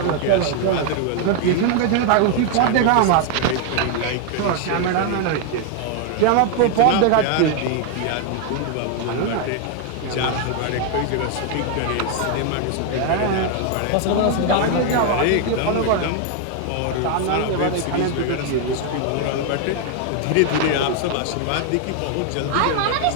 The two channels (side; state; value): both; different; correlation 0.00